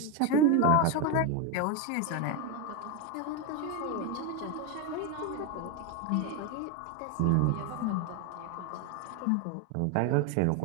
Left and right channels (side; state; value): both; different; correlation 0.02